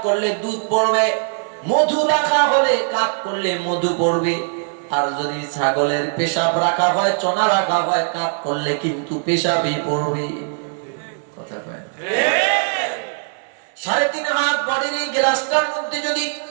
করলে দুধ পড়বে, মধু রাখা হলে কাট করলে মধু পড়বে। আর যদি ছাগলের পেশাব রাখা হয়, চনা রাখা হয়, কাট করলে কিন্তু পেশাবই পড়বে। কথা কয় না? 3.5 হাত বডির এই গ্লাসটার মধ্যে যদি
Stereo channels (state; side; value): silent; left; digital silence